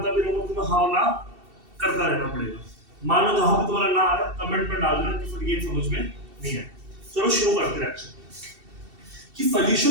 भी रहूंगा, तुम्हें हाँ ना करता रहना पड़ेगा। मान लो जहां पे तुम्हारा ना आ रहा है कमेंट में डाल देना कि फिर ये समझ में नहीं है। चलो शुरू करते हैं लेक्चर कि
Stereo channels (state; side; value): late; left; 2.7 ms